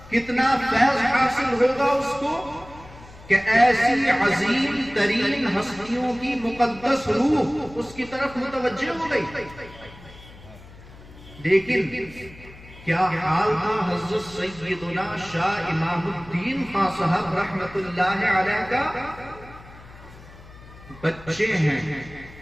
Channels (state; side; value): noise; left; hum, 20 dB below the sound